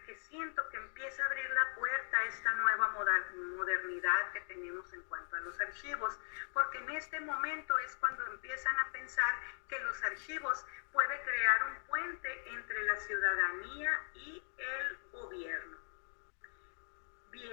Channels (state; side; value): silent; right; 52 dB below the other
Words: que siento que empieza a abrir la puerta a esta nueva modernidad que tenemos en cuanto a los archivos, porque en este momento es cuando empiezan a pensar que los archivos pueden crear un puente entre la ciudadanía y el gobierno.